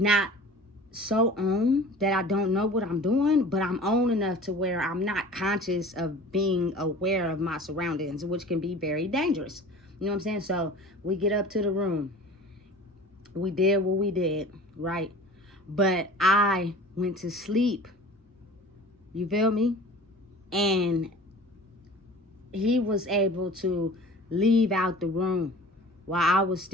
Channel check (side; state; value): both; normal; correlation 0.42